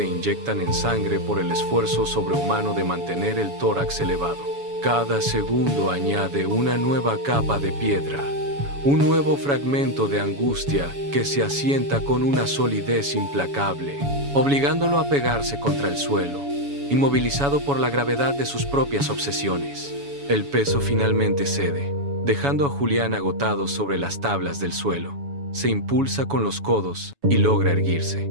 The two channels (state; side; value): late; left; 7.1 ms